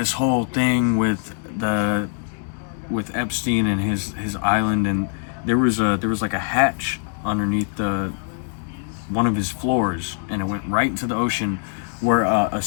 whole thing with Epstein and his island, and there was like a hatch underneath one of his floors, and it went right into the ocean where a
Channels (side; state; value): right; silent; 58 dB below the other